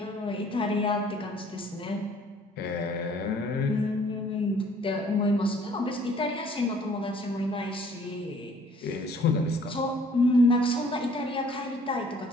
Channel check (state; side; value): normal; both; correlation 0.57